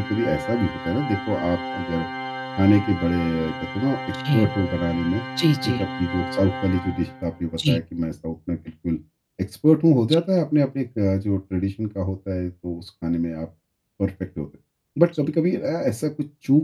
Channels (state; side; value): identical; both; correlation 1.00